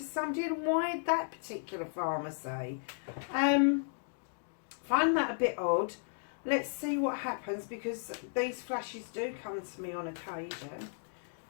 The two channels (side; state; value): right; silent; digital silence